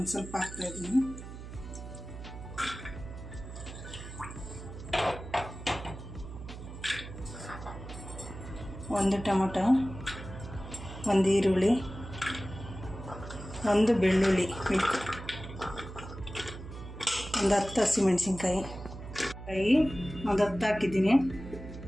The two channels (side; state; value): right; noise; hum, 12 dB below the sound